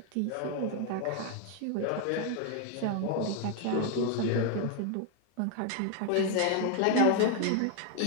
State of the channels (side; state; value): both; different; correlation 0.01